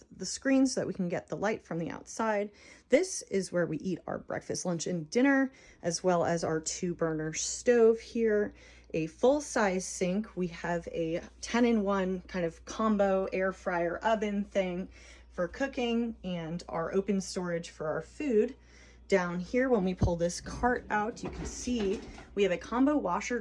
the screens so that we can get the light from the outside. This is where we eat our breakfast, lunch, and dinner, as well as our 2-burner stove here. A full-size sink. We have a 10-in-1 kind of combo air fryer oven thing for cooking, and our open storage for our food. Down here, when we pull this cart out, you can see we have a combo washer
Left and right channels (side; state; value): both; identical; correlation 1.00